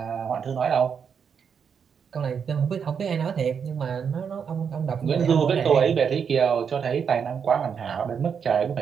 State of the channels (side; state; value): left; quieter; 6.9 dB